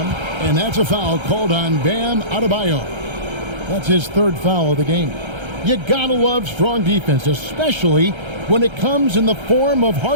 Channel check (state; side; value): late; left; 1.3 ms